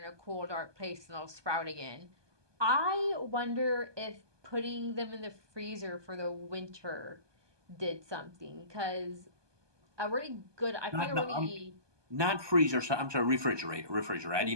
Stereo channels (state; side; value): late; left; 1.2 ms